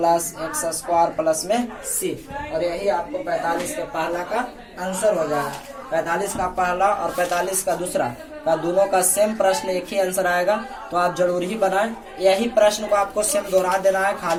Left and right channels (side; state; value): both; identical; correlation 1.00